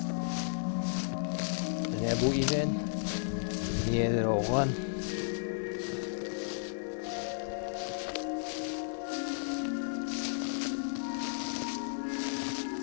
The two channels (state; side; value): silent; right; 55 dB below the other